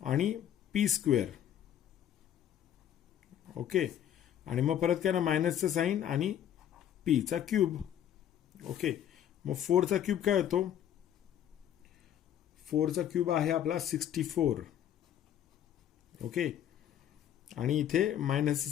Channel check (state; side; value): quieter; right; 10.4 dB